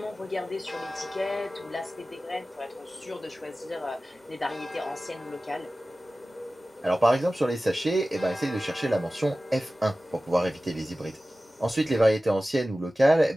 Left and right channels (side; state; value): both; normal; correlation 0.96